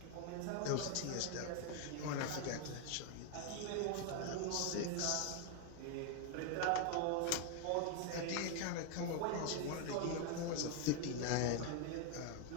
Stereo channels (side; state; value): both; different; correlation 0.01